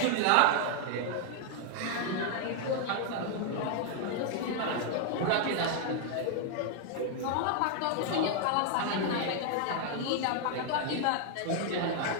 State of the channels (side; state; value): both; different; correlation 0.00